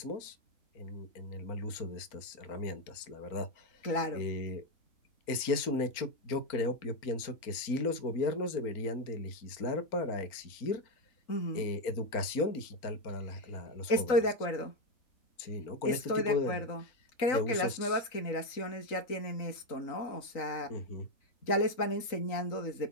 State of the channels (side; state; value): right; late; 3.9 ms